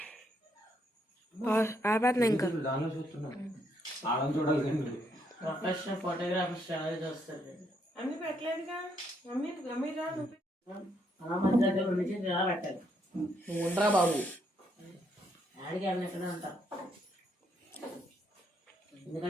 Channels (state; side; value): normal; both; correlation 0.74